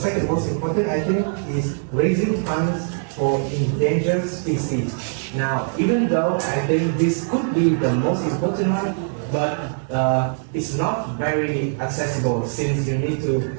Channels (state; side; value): silent; left; 63 dB below the other